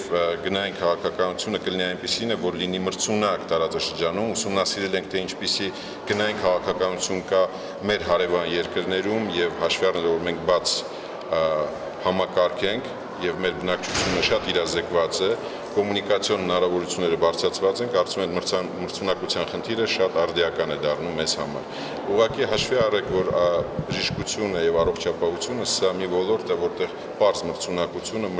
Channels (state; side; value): identical; both; correlation 1.00